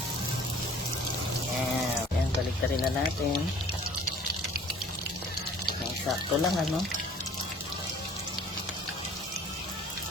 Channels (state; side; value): normal; both; correlation 0.51